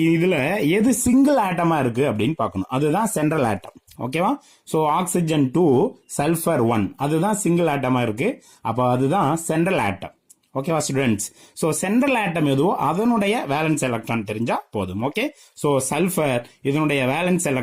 இதுல எது சிங்கிள் ஆட்டமா இருக்கு அப்படின்னு பார்க்கணும். அதுதான் சென்ட்ரல் ஆட்டம். ஓகேவா? ஸோ ஆக்சிஜன் 2, சல்ஃபர் 1 அதுதான் சிங்கிள் ஆட்டமா இருக்கு. அப்போ அதுதான் சென்ட்ரல் ஆட்டம். ஓகேவா ஸ்டூடெண்ட்ஸ்? ஸோ சென்ட்ரல் ஆட்டம் எதுவோ அதனுடைய வேலன்ஸ் எலக்ட்ரான் தெரிஞ்சா போதும். ஓகே, ஸோ சல்ஃபர் இதனுடைய valence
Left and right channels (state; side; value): identical; both; correlation 1.00